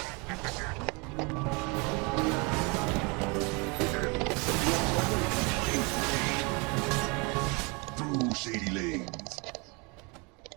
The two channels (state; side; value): quieter; left; 29.8 dB